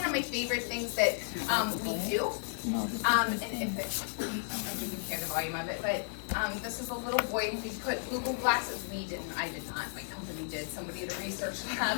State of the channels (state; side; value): silent; right; digital silence